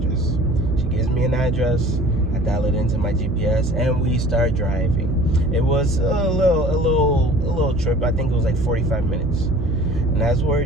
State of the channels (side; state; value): right; noise; hum, 1 dB below the sound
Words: She gives me an address. I dial it into my GPS, and we start driving. It was a little trip. I think it was like 45 minutes. And as we're